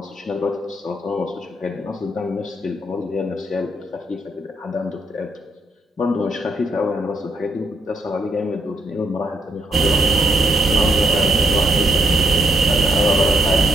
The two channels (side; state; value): both; normal; correlation 0.76